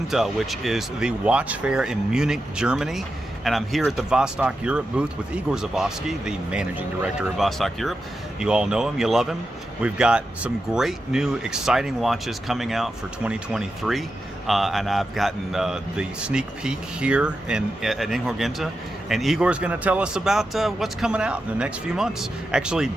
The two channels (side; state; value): both; normal; correlation 0.89